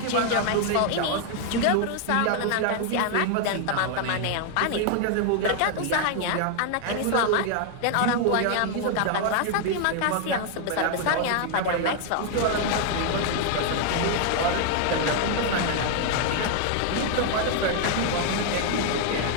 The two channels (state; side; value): different; both; correlation 0.00